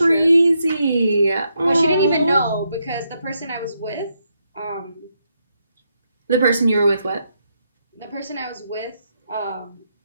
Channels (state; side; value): inverted; both; correlation -0.80